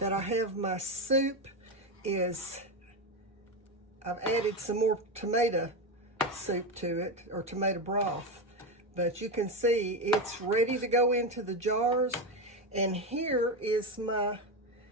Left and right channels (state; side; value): normal; both; correlation 0.14